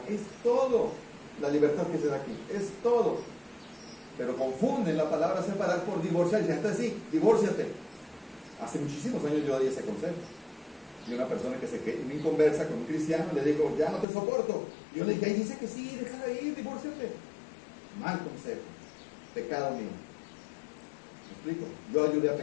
Es todo. La libertad que se da aquí, es todo. Pero confunden la palabra separar por divorciar. Y dicen, entonces sí, divórciate. Hace muchísimos años yo di ese consejo. Y una persona que se me conversa con un cristiano le digo, ya no te soporto. Y yo le dije, ahí dice que sí, déjala ir, divórciate. Mal consejo. Pecado mío. ¿Me explico? Yo ayudé a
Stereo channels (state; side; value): drops out; right; at 14.1 s